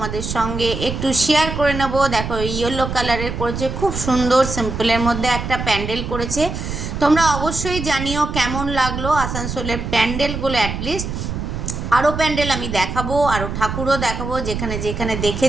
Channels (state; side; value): noise; right; rumble, 5 dB below the sound